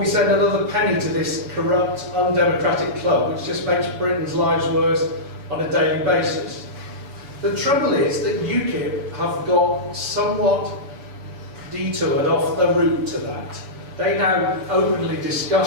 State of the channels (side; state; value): left; late; 7.0 ms